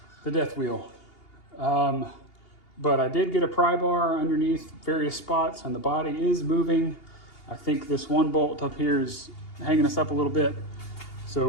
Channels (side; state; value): right; late; 2.8 ms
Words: death wheel. But I did get a pry bar underneath various spots, and the body is moving. I think this one bolt up here is hanging us up a little bit. So